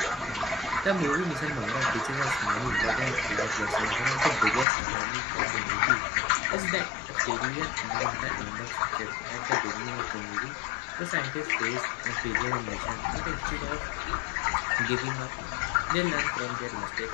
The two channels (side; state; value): right; drops out; at 4.7 s